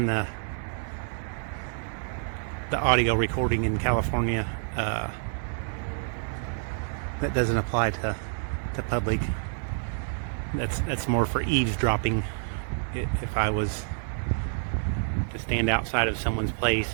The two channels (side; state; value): left; silent; digital silence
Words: the audio recording in California. That doesn't apply to public. That's more for eavesdropping. If I was to stand outside of someone's